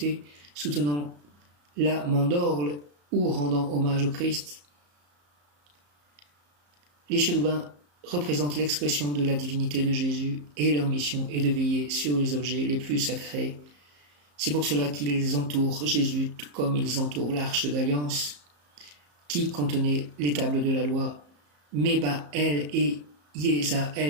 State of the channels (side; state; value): left; late; 34 ms